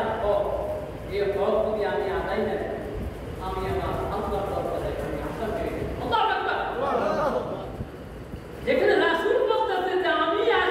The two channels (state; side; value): identical; both; correlation 1.00